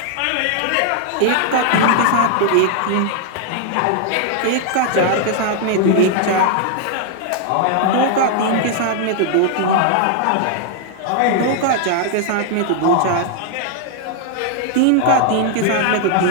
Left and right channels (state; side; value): different; both; correlation 0.00